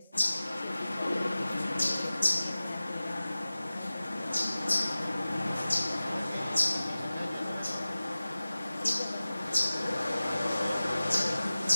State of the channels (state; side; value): inverted; both; correlation -0.97